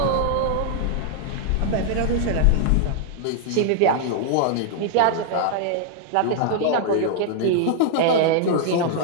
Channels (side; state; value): both; different; correlation 0.00